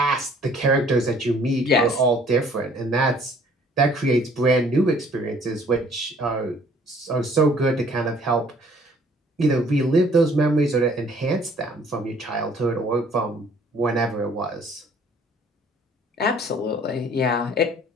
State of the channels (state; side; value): normal; both; correlation 0.57